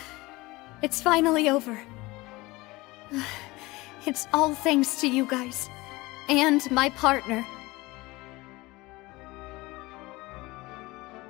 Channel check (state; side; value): quieter; right; 21.4 dB